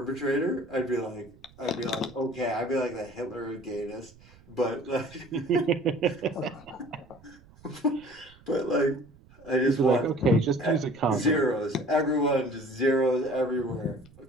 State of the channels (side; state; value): right; noise; rumble, 25 dB below the sound